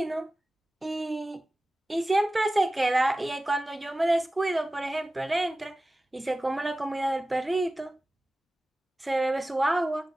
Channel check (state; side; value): normal; both; correlation 0.96